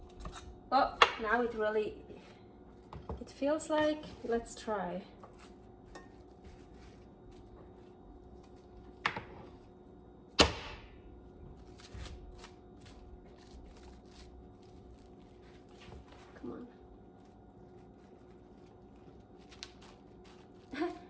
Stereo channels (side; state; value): both; identical; correlation 1.00